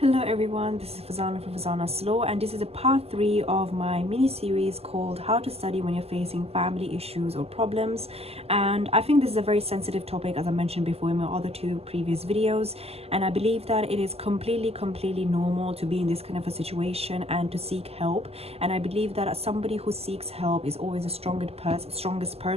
everyone, this is Farzana from Farzanaslaw, and this is a part 3 of my mini series called How to Study When You're Facing Family Issues or Problems. And I think this is a very sensitive topic, as I mentioned before in my other 2 previous videos, and I believe that it is completely normal to be in this kind of a situation and to seek help. And I believe that somebody who seeks help is always the strongest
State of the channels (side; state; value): left; late; 0.29 ms